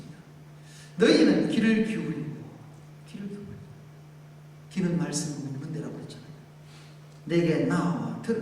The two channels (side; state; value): both; identical; correlation 1.00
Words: 너희는 귀를 기울이고, 귀는 말씀을 먹는 데라고 했잖아요. 내게 나와